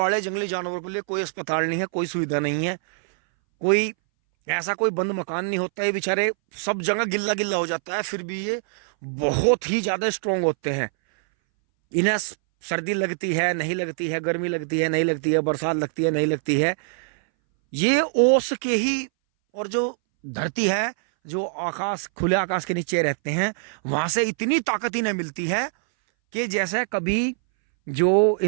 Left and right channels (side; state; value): left; silent; 61 dB below the other